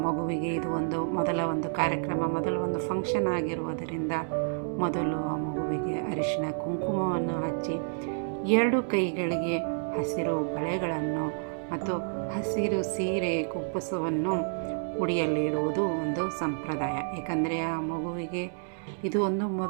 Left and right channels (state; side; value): silent; left; digital silence